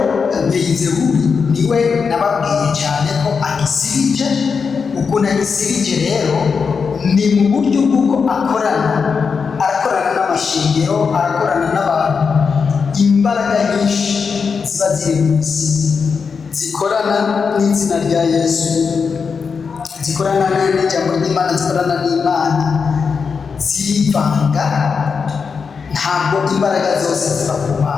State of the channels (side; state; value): right; quieter; 5.6 dB